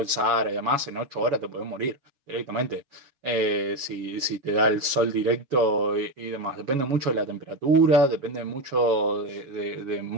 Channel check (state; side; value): late; left; 7.2 ms